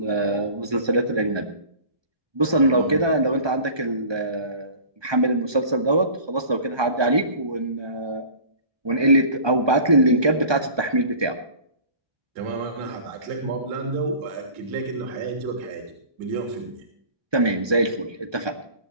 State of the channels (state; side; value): late; left; 1.2 ms